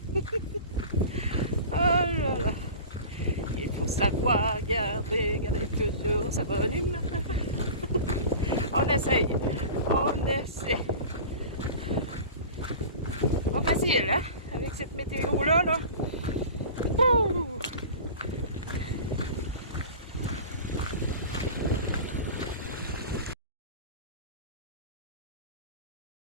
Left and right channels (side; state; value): both; inverted; correlation -0.36